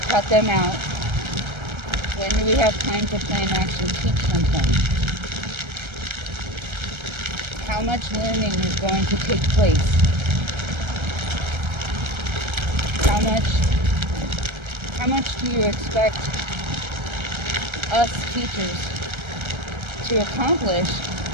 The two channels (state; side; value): late; left; 1.3 ms